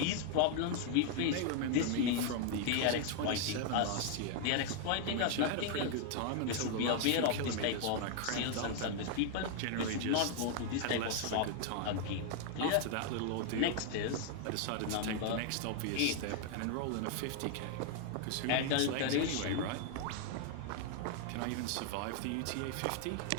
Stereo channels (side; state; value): both; different; correlation 0.00